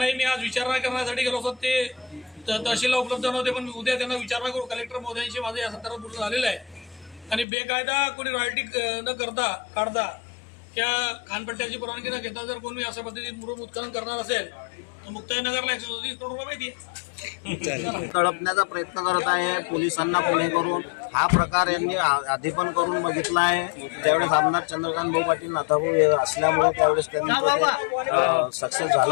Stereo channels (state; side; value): drops out; right; at 7.5 s